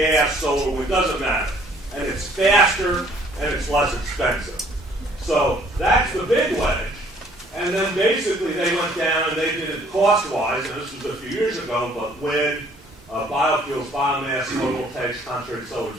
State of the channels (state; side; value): normal; both; correlation 0.59